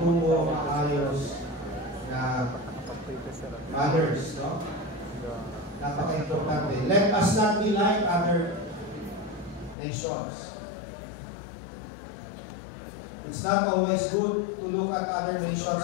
maayos na others, no? Napaka-importante. Let us not be like other nations. It's not always good to look at other nations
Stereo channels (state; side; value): drops out; right; at 9.8 s